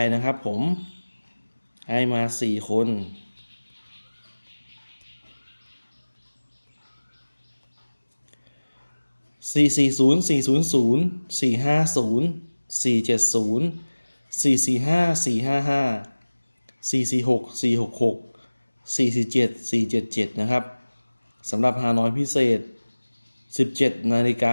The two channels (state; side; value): inverted; both; correlation -1.00